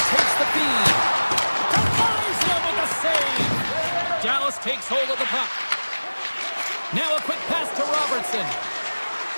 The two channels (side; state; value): both; inverted; correlation -1.00